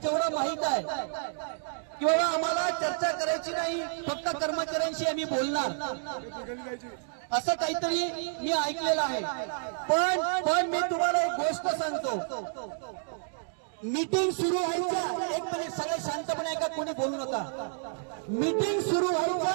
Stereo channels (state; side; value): silent; left; digital silence